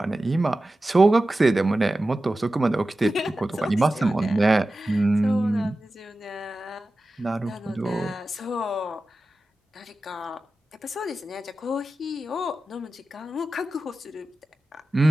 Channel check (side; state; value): both; normal; correlation 0.94